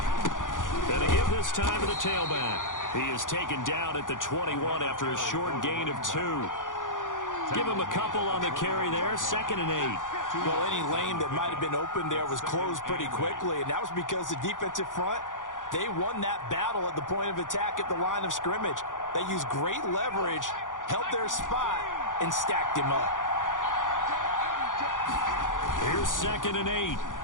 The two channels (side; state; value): right; late; 0.88 ms